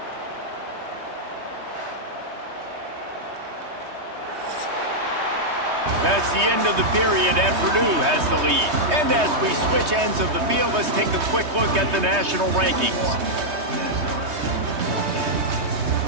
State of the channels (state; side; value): late; left; 3.2 ms